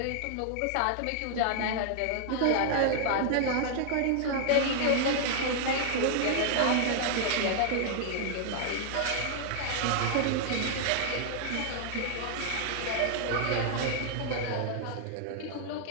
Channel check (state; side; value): different; both; correlation 0.00